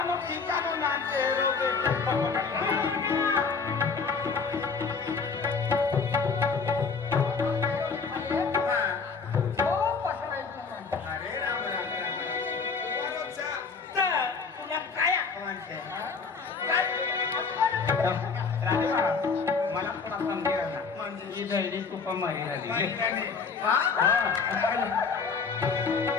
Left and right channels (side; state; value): right; quieter; 5.1 dB